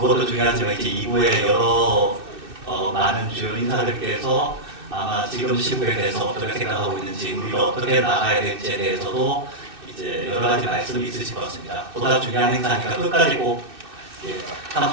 중요하지만 이제 2부에 여러 많은 주요 인사들께서 아마 지금 시국에 대해서 어떻게 생각하고 있는지 우리가 어떻게 나가야 될지에 대해서도 이제 여러 가지 말씀이 있으실 것 같습니다. 보다 중요한 행사니까 끝까지 꼭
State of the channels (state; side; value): late; left; 2.6 ms